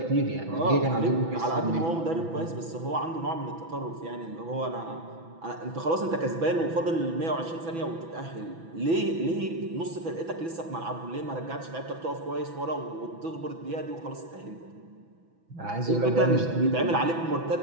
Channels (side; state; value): left; late; 6.0 ms